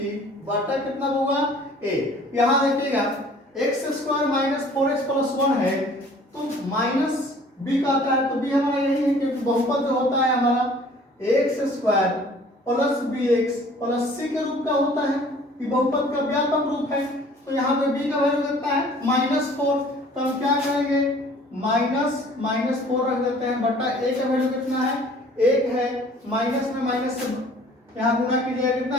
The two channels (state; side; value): normal; both; correlation 0.52